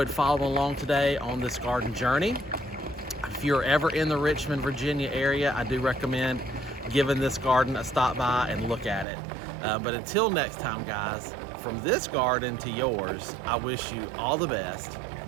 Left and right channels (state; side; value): drops out; left; at 9.1 s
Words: following along today on this garden journey. If you're ever in the Richmond, Virginia area, I do recommend giving this garden a stop by and look at it. But until next time, guys, from this garden to yours, I wish you all the best